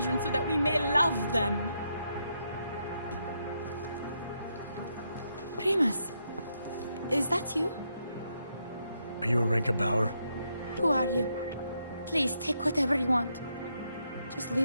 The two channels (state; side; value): inverted; both; correlation -0.79